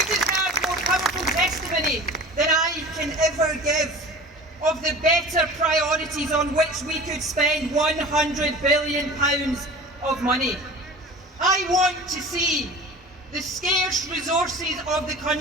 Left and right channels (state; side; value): normal; both; correlation 0.39